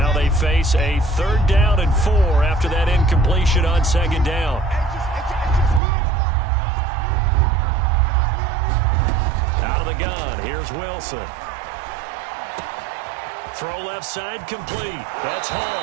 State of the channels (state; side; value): drops out; left; at 5.8 s